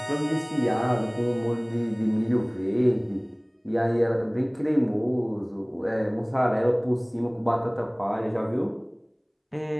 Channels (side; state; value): both; identical; correlation 1.00